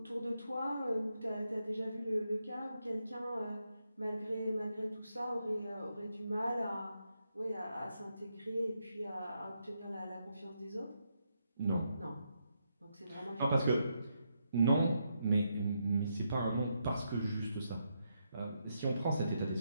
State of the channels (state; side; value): inverted; both; correlation -0.81